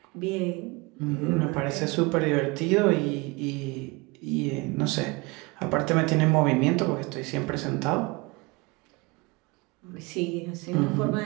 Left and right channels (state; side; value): quieter; left; 26.0 dB